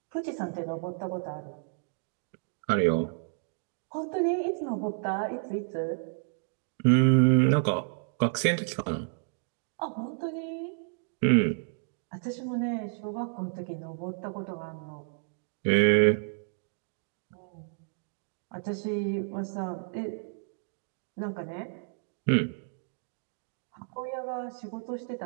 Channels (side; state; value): left; silent; digital silence